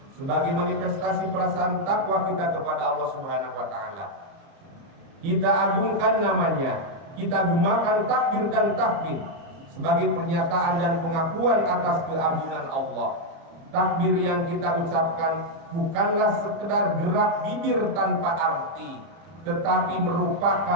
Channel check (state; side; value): late; left; 30 ms